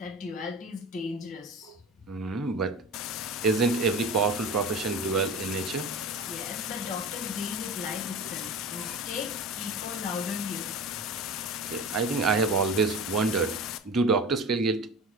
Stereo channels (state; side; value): normal; both; correlation 0.32